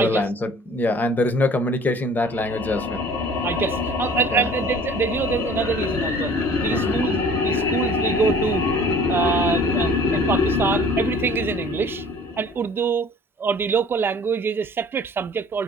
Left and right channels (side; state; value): both; normal; correlation 0.49